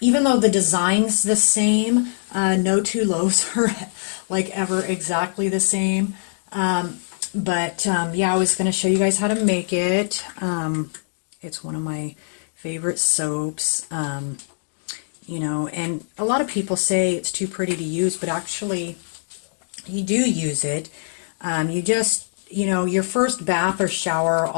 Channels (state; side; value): silent; right; digital silence